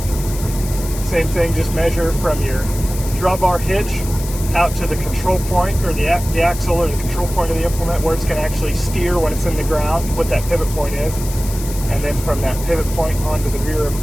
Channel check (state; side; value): noise; left; hiss, 12 dB below the sound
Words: Same thing, just measure from your drawbar hitch out to the control point, or the axle or the control point of the implement, where it's going to actually steer when it's in the ground, what that pivot point is. And then from that pivot point onto the rear of